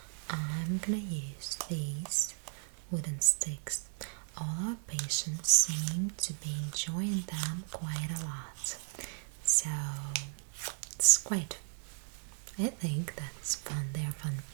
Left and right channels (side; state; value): left; silent; 54 dB below the other